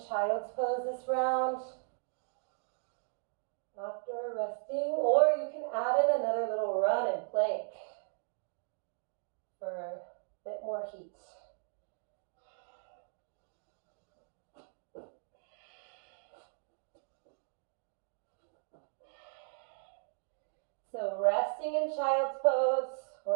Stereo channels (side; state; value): left; silent; digital silence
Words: child's pose this round after resting, or you can add in another little run and plank for a bit more heat. So resting in child's pose